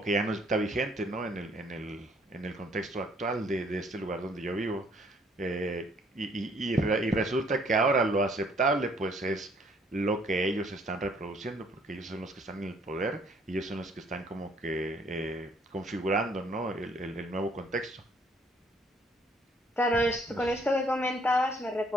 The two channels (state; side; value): normal; both; correlation 0.63